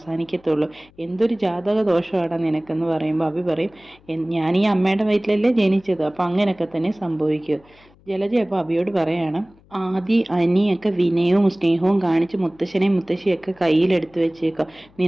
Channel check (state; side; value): noise; left; hum, 29 dB below the sound